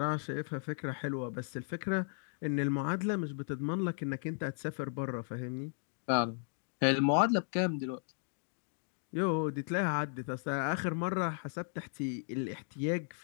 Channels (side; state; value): right; silent; digital silence